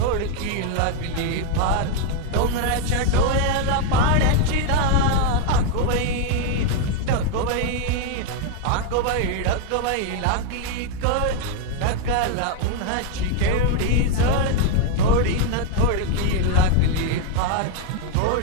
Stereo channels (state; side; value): different; both; correlation 0.00